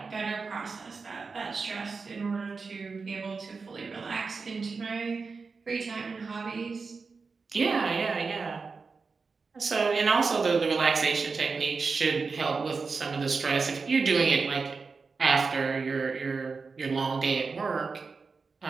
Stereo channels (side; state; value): left; quieter; 4.6 dB